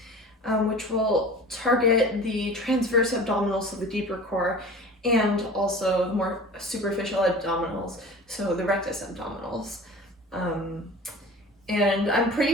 which will target the transverse abdominals, so the deeper core, and also more superficial abdominals, so the rectus abdominals. And I'm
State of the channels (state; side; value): normal; both; correlation 0.39